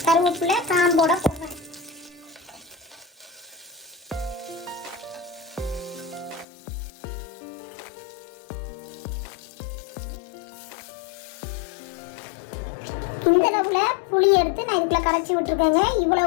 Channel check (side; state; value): right; drops out; at 6.5 s